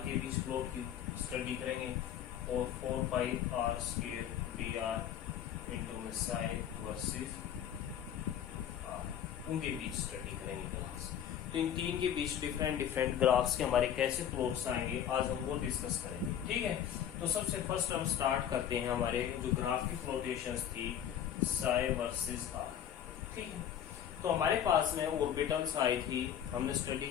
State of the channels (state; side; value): quieter; right; 9.7 dB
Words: के बीच प्लॉट की स्टडी करेंगे और 4 pi R square D R into psi versus उनके बीच स्टडी करेंगे ग्राफ्स। तो इन तीन के बीच डिफरेंट ग्राफ्स के हमारे कैसे प्लॉट्स आएंगे आज हम वो डिस्कस करेंगे। ठीक है, तो सबसे फर्स्ट हम स्टार्ट करते हैं हमारे जो ग्राफ की फ्लोटेशंस थी साई वर्सेस आर। ठीक है, तो हमारे पास में ऑर्बिटल्स आई थी, हमने